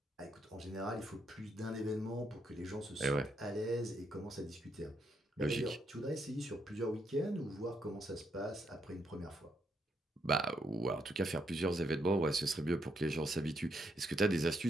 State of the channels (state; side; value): normal; both; correlation 0.77